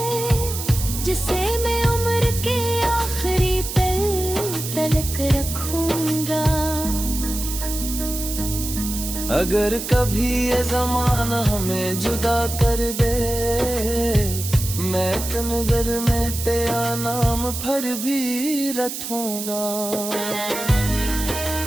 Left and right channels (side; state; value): right; noise; hiss, 6 dB below the sound